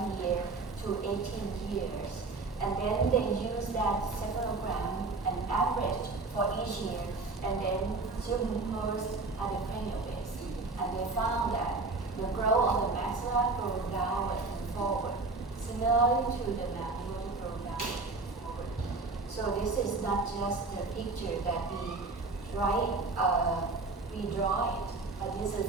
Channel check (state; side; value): quieter; left; 3.6 dB